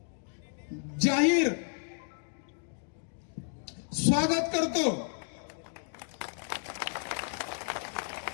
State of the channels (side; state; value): right; silent; 56 dB below the other